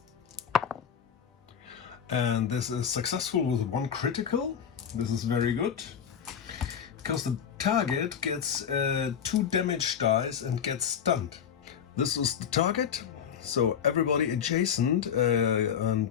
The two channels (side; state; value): right; quieter; 8.1 dB